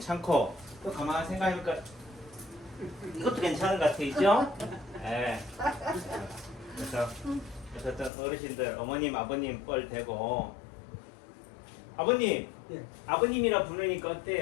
또 가만히 생각해보니까 이것도 괜찮은 것 같아요. 네. 그래서 어떤 어르신들 어머님 아버님 뻘 대고 아버님 아버님이라 부르니까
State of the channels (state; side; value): drops out; right; at 8.1 s